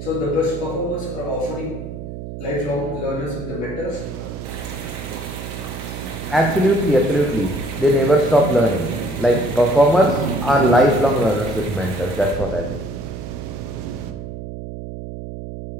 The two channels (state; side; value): noise; right; hum, 9 dB below the sound